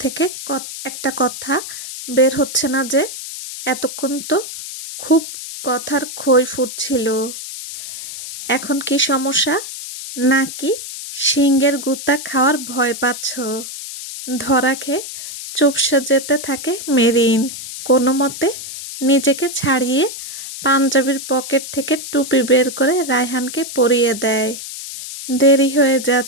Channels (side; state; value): left; noise; hiss, 10 dB below the sound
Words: থেকে একটা কথা বের হচ্ছে না যে? এতক্ষণ তো খুব কথার খই ফুটছিল। এখন কি সমস্যা? নাকি শিঙের গুতা খাওয়ার ভয় পাচ্ছ? ধরা খেয়ে চুপসে যেতে থাকে মেরিন। কোনো মতে নিজেকে ছাড়িয়ে পাঞ্জাবির পকেট থেকে টুপি বের করে রায়হানকে পরিয়ে দেয়। দেরি হয়ে